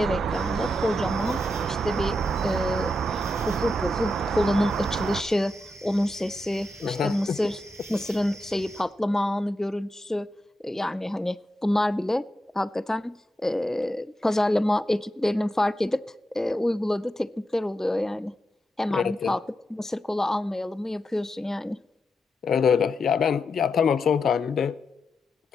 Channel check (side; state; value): both; normal; correlation 0.86